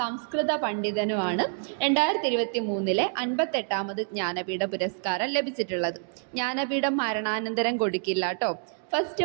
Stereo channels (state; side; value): silent; left; digital silence